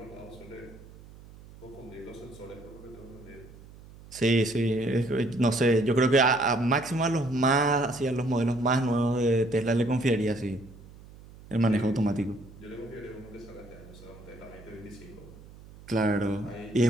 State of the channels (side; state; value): right; noise; hum, 20 dB below the sound